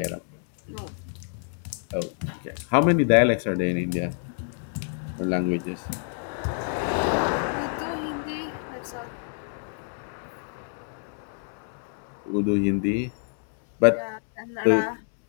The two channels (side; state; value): right; silent; digital silence